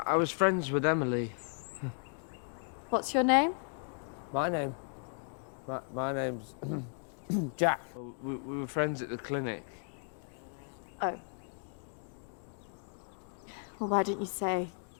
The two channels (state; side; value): silent; right; 54 dB below the other